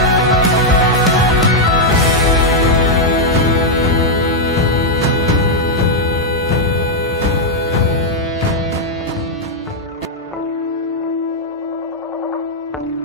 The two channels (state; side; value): normal; both; correlation -0.03